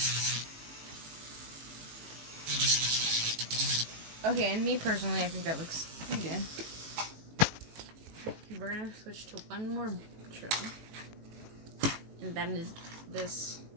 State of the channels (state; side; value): late; left; 18 ms